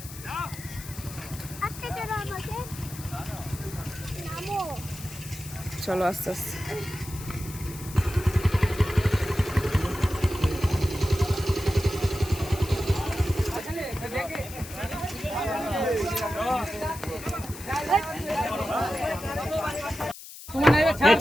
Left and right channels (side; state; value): left; noise; hiss, 14 dB below the sound